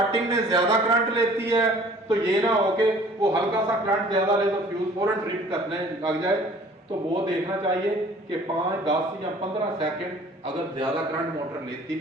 में ज्यादा करंट लेती है तो ये ना हो कि वो हल्का सा करंट ज्यादा ले तो फ्यूज फौरन ट्रिप करने लग जाए, तो वो देखना चाहिए कि 5, 10 या 15 सेकंड अगर ज्यादा करंट मोटर लेती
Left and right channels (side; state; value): both; normal; correlation 0.51